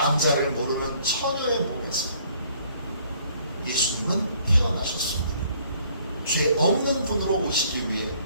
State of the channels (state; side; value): inverted; both; correlation -0.61